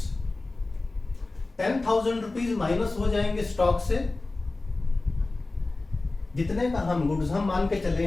10,000 rupees minus हो जाएंगे स्टॉक से, जितने का हम गुड्स हम मान के चले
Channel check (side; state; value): right; quieter; 3.2 dB